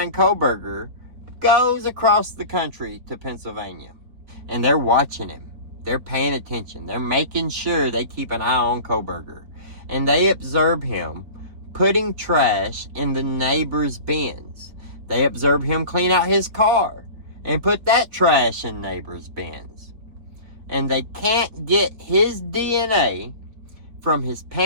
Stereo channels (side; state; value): left; late; 4.4 ms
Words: Kohberger goes across the country to Pennsylvania, and they're watching him. They're paying attention. They're making sure they keep an eye on Kohberger. And they observe him putting trash in the neighbor's bins. They observe him clean out his car and put that trash in neighbor's bins. And they can't get his DNA from his